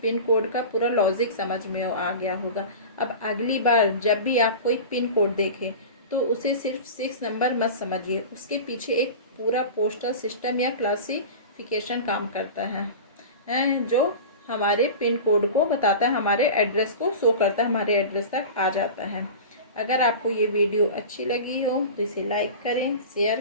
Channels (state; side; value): inverted; both; correlation -0.32